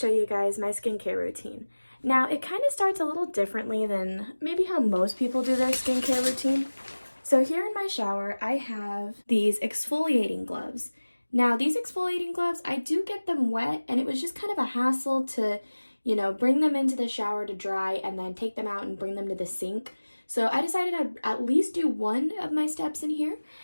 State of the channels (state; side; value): inverted; both; correlation -1.00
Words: you guys my skincare routine. Now, it kind of starts a little differently than maybe how most people do their skincare routine. So here in my shower, I have these exfoliating gloves. Now, these exfoliating gloves, I do get them wet, and it was just kind of a hassle to, bring them into the shower to dry and then take them out and bring them to the sink. So I decided I'd at least do one of my steps in here,